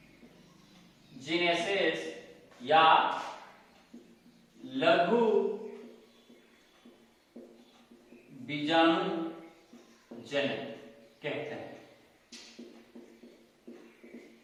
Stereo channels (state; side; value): identical; both; correlation 1.00